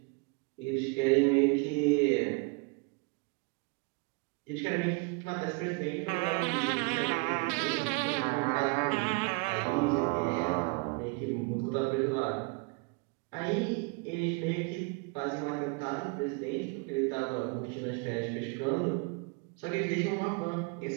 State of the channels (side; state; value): left; quieter; 29.7 dB